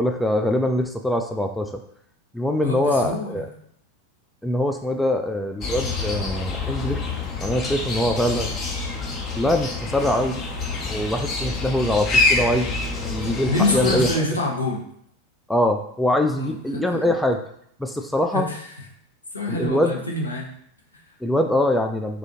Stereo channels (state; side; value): normal; both; correlation 0.55